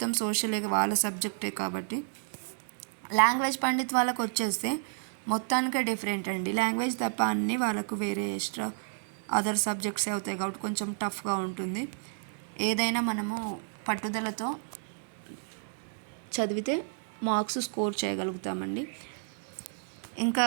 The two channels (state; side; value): silent; left; digital silence